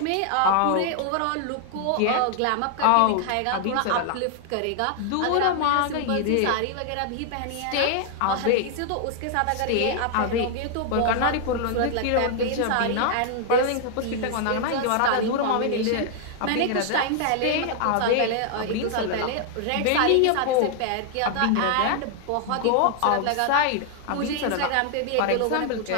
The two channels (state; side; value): different; both; correlation 0.00